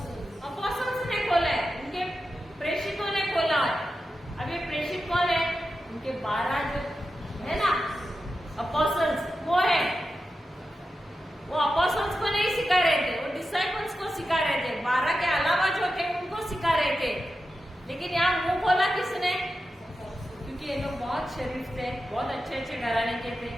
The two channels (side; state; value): both; normal; correlation 0.90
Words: अपोस्टल्स ने खोला है, उनके प्रेषितों ने खोला है। अब ये प्रेषित कौन है? उनके 12 जो है ना अपोस्टल्स, वो है। वो अपोस्टल्स को नहीं सिखा रहे थे, वो डिसाइपल्स को सिखा रहे थे। 12 के अलावा जो थे उनको सिखा रहे थे। लेकिन यहाँ मुंह खोला किसने? क्योंकि ये लोग बहुत शरीफ थे, बहुत अच्छे अच्छे घराने के थे,